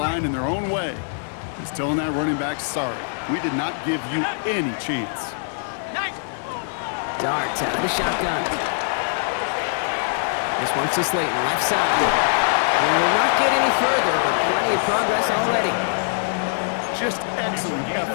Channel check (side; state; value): right; silent; digital silence